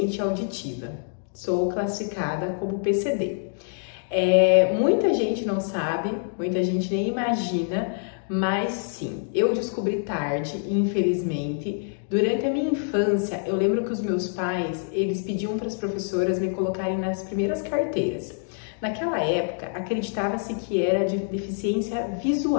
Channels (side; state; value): right; silent; digital silence